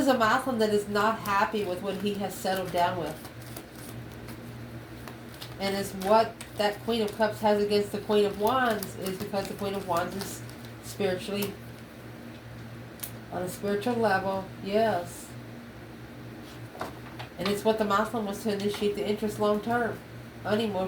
a masculine that is not happy with what he has settled down with. And it's what that Queen of Cups has against the Queen of Wands is because the Queen of Wands is spiritually on a spiritual level. Yes. And it's what the masculine was to initiate the interest long term.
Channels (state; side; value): identical; both; correlation 1.00